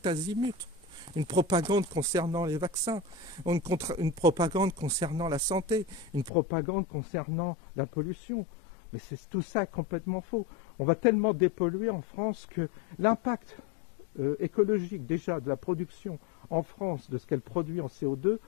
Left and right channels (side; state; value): right; drops out; at 6.3 s